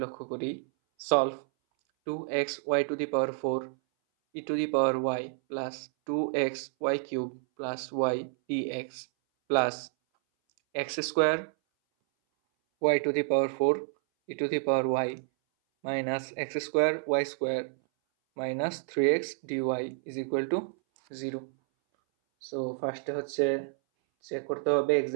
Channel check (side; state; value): left; silent; 58 dB below the other